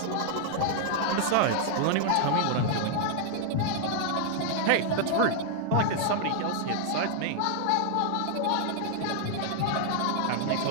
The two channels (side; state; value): both; different; correlation 0.00